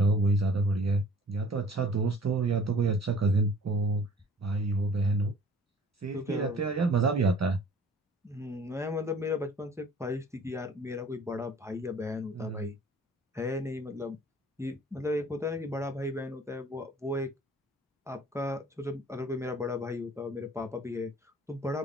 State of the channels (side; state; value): both; normal; correlation 0.51